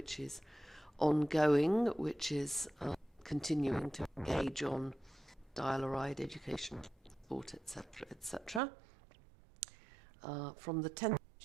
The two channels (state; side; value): drops out; left; at 8.6 s